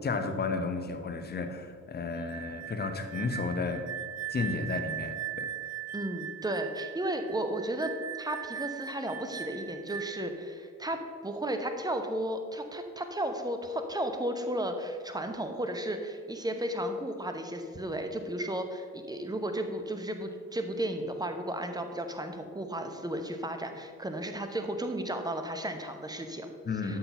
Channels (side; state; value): both; normal; correlation 0.45